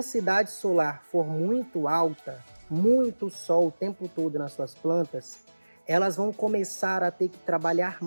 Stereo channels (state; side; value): inverted; both; correlation -1.00